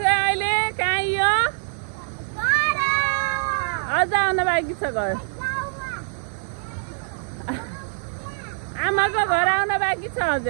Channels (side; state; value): left; silent; digital silence